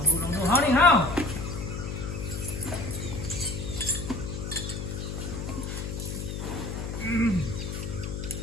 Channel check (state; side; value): noise; left; hum, 5 dB below the sound